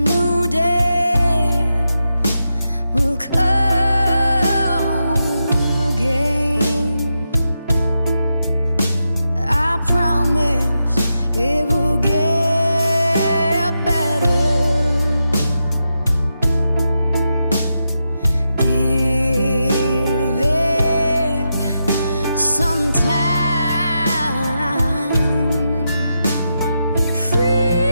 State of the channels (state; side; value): inverted; both; correlation -0.87